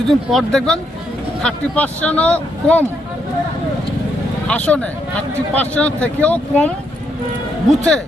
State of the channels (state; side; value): normal; both; correlation 0.77